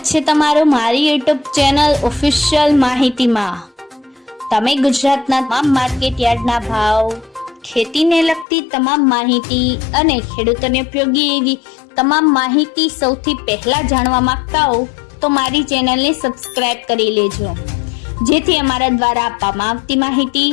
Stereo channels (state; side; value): drops out; right; at 8.5 s